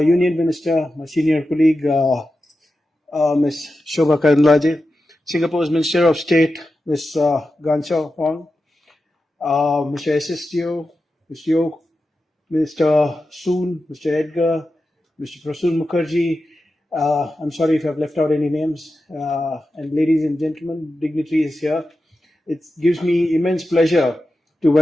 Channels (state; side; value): normal; both; correlation 0.91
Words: Minister, my senior colleague, Ms. Shobha Karandlaje, Singapore's Minister of State, Ms. Ganchao Huang, Mr. SSTO, Mr. Yo, Mr. Soon, Mr. Edgar, Mr. Prasoon Mukherjee. I'm sorry if I've left out any names. And ladies and gentlemen, dignitaries here. It gives me immense pleasure to